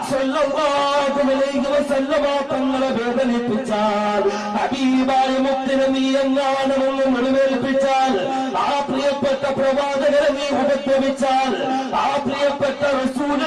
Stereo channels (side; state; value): both; identical; correlation 1.00